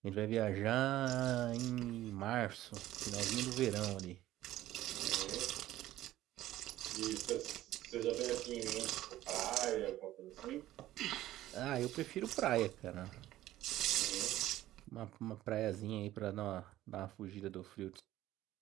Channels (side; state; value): left; quieter; 14.6 dB